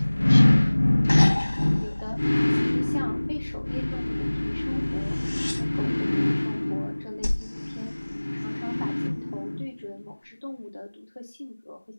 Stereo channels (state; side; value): inverted; both; correlation -1.00